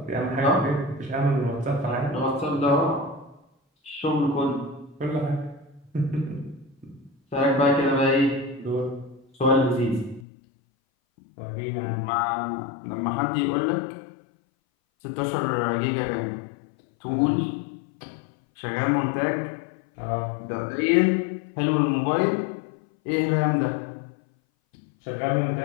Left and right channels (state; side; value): drops out; right; at 10.2 s